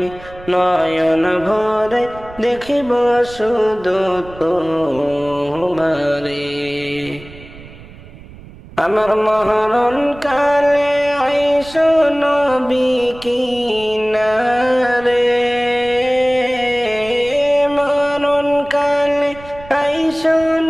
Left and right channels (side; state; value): right; noise; rumble, 18 dB below the sound